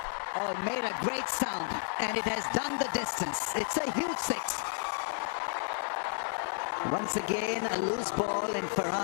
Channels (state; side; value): silent; right; digital silence